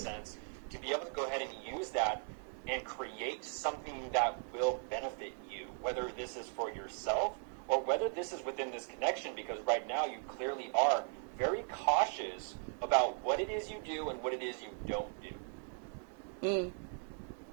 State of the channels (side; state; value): left; silent; 52 dB below the other